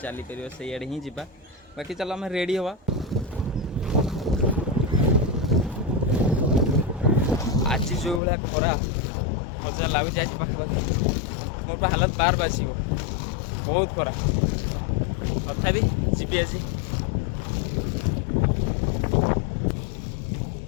पार से आड़े ही जा बाकी चलो आम रेडी हवा। आज जो भाया खरा मजा लगुच आज पाखापाखि मोर हालत बार बास बहुत खरा तथा जी आज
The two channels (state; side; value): drops out; right; at 8.2 s